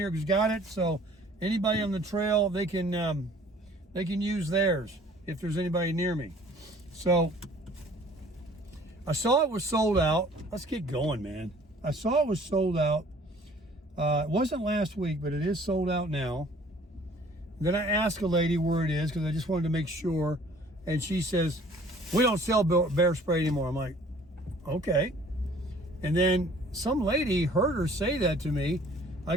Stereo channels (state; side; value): normal; both; correlation 0.53